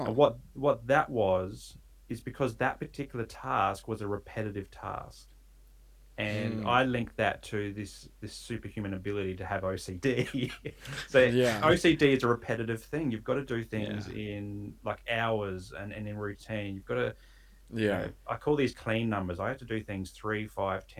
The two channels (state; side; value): identical; both; correlation 1.00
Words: And what that was is because that particular task was a repetitive task. And Mm. I link that to this superhuman ability to have OCD. So Yeah. OCD is a repetitive thing. You've got to do Yeah. things in like hours and in routine. You've got to, Yeah. I call these clean numbers. I had to do things 3, 5,